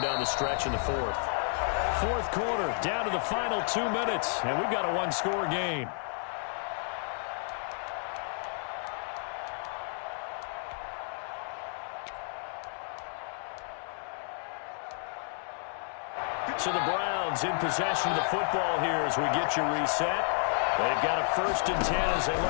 down the stretch in the fourth. Fourth quarter, down to the final 2 minutes, and we've got a one-score game. So the Browns in possession of the football here as we get you reset. They've got a 1st and 10 as they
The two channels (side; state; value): right; silent; 57 dB below the other